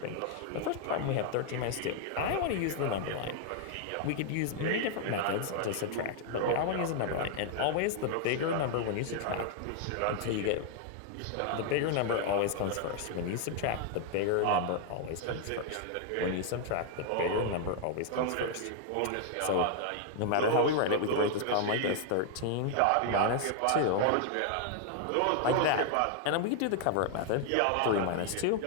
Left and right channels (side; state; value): both; different; correlation 0.00